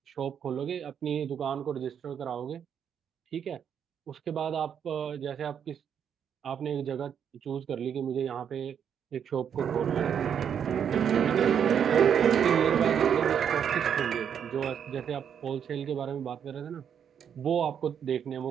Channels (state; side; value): quieter; left; 8.2 dB